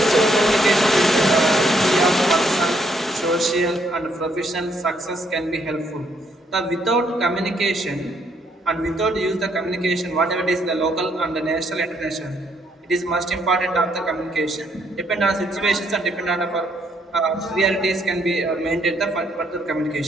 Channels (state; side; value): normal; both; correlation 0.71